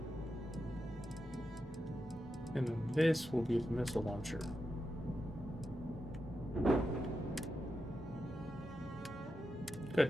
And then this will be the missile launcher. Good.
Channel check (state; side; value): normal; both; correlation 0.88